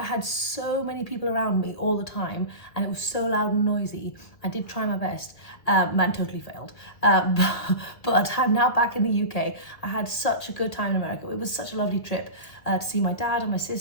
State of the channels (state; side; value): late; right; 1.7 ms